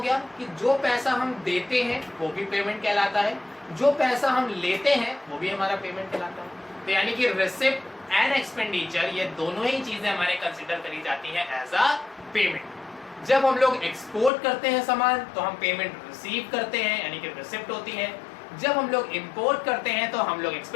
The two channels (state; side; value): drops out; right; at 14.3 s